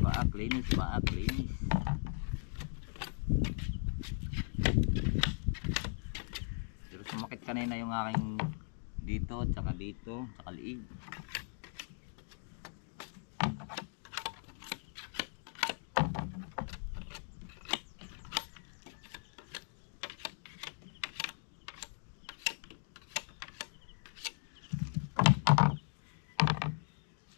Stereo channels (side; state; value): right; silent; 52 dB below the other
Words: Baak linis, baak linis. Pero sumakit kanina yung aking dito, tsaka dito, tsaka liig.